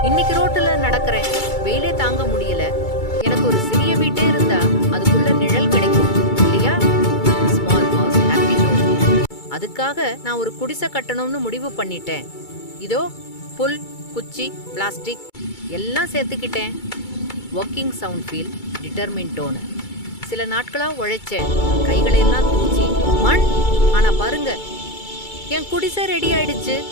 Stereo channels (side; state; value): right; late; 2.3 ms